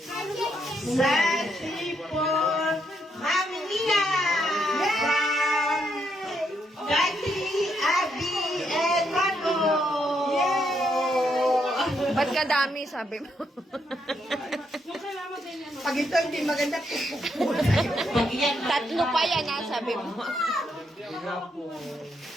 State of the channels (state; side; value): normal; both; correlation 0.77